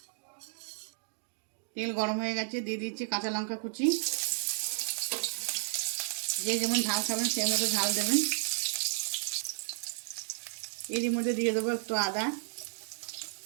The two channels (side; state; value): left; silent; digital silence